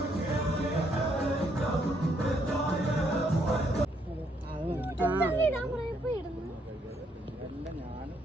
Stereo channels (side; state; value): both; normal; correlation 0.72